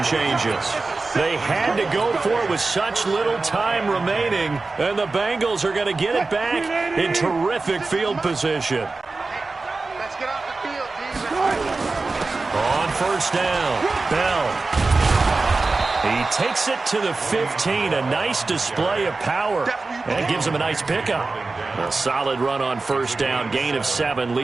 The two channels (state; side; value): quieter; left; 3.7 dB